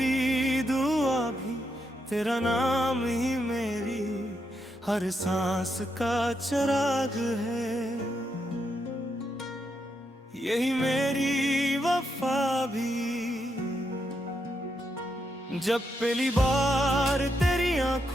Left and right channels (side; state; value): both; normal; correlation 0.81